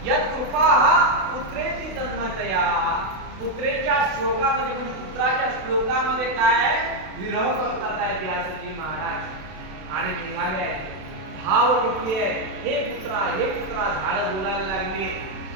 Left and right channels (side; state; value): left; late; 32 ms